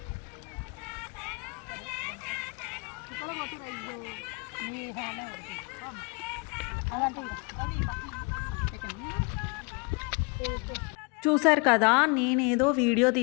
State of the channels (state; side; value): quieter; right; 31.8 dB